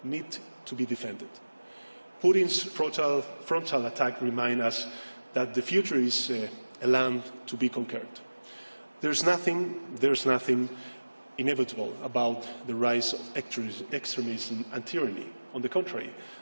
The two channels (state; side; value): inverted; both; correlation -1.00